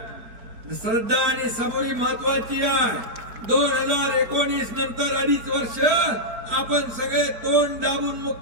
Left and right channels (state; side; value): late; left; 4.4 ms